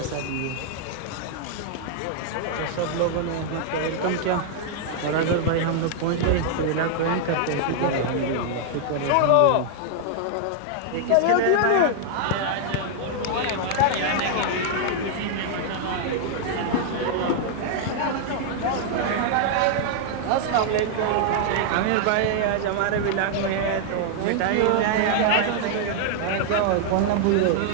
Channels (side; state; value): both; different; correlation -0.01